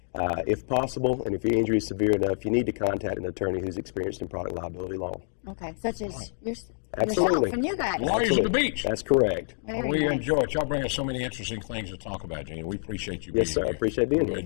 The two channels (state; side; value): silent; right; digital silence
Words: if possible, and if your injury is severe enough, you need to contact an attorney who's experienced in product liability law. Okay, such as Absolutely. yourself and you guys. Lawyers at the beach. That's correct. Very We nice. enjoy it. Y'all bring us so many interesting things to talk about, Gene. We appreciate you being Yes, sir. here. I appreciate being We here.